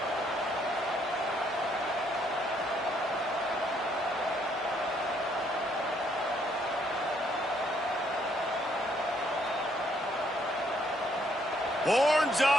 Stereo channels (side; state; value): both; normal; correlation 0.69